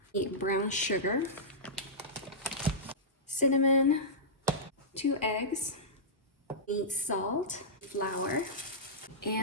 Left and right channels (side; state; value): both; normal; correlation -0.15